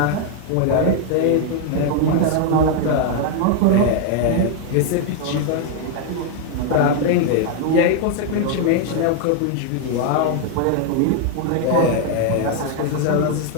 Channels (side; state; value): both; different; correlation 0.01